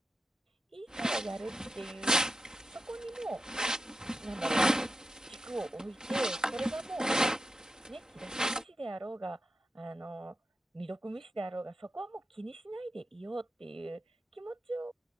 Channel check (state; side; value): normal; both; correlation 0.89